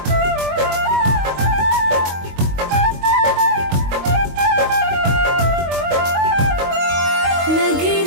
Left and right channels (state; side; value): late; left; 22 ms